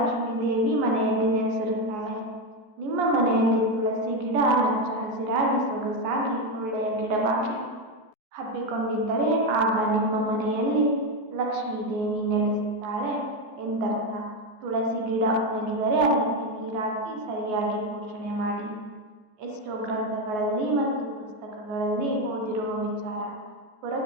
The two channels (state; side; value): late; left; 14 ms